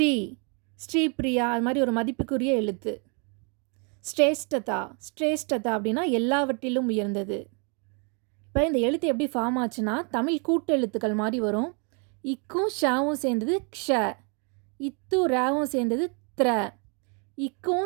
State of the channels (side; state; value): left; quieter; 36.6 dB